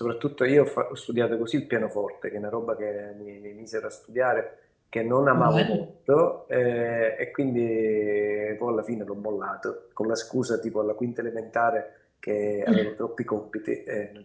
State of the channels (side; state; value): both; identical; correlation 1.00